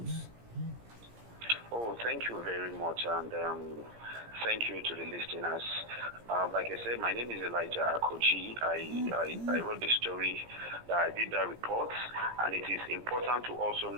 Oh, thank you very much, and thank you to the listeners. Like I said, my name is Elijah Akoji. I wrote the story, I did that report, and it is important to also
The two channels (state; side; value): late; left; 17 ms